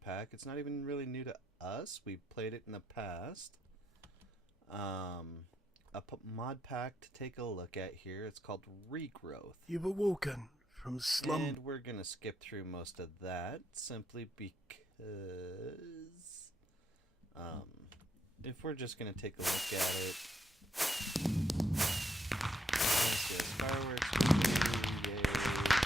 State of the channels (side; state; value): both; normal; correlation 0.78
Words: pack. It's not even really new to us. We've played it in the past. Mod pack to take a look at here. It's called Regrowth. You were walking from slum. And we're going to skip through most of that simply because if we're just going to take a look at it, fireworks, yay.